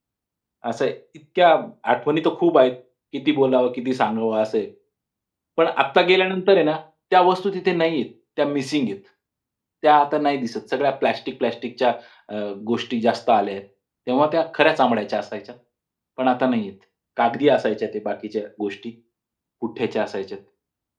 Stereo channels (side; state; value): both; identical; correlation 1.00